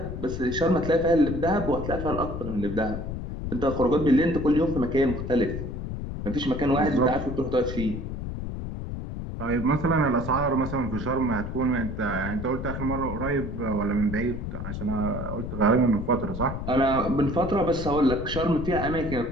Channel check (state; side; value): noise; left; rumble, 6 dB below the sound